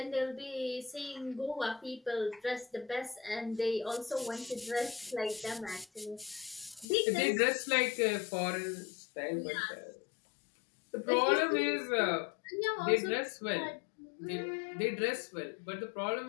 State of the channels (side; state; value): right; drops out; at 6.9 s